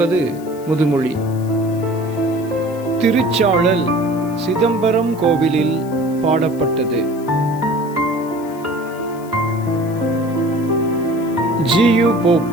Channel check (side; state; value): left; noise; hiss, 23 dB below the sound